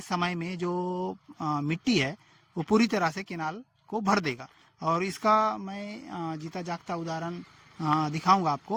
समय में जो मिट्टी है वो पूरी तरह से केनाल को भर देगा। और इसका मैं जीता जागता उदाहरण दिखाऊंगा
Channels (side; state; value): both; identical; correlation 1.00